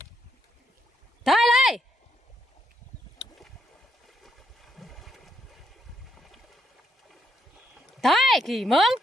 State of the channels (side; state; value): both; normal; correlation 0.76